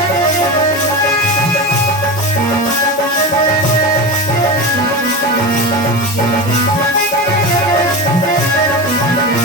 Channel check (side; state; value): both; normal; correlation 0.24